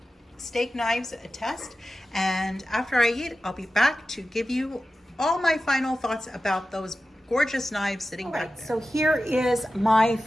steak knives a test, and after I eat, I'll be back to give you all my final thoughts about those gorgeous knives sitting back there. So here is my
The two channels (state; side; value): normal; both; correlation 0.94